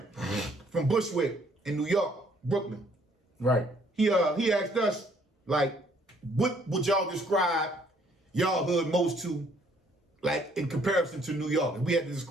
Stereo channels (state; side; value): normal; both; correlation 0.64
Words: from Bushwick in New York, Brooklyn. Right. He asked us, like, what would y'all describe y'all hood most to, like, in comparison to New York? And we had to